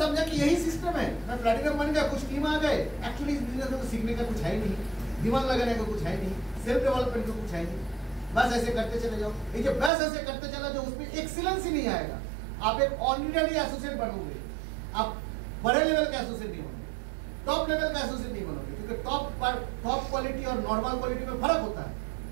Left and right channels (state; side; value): drops out; left; at 9.9 s